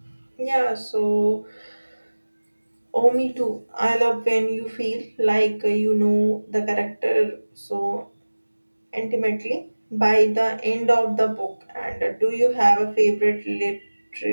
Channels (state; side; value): inverted; both; correlation -1.00